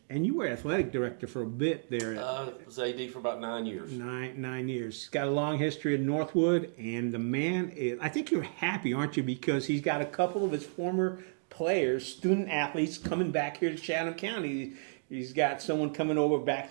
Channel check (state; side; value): silent; left; digital silence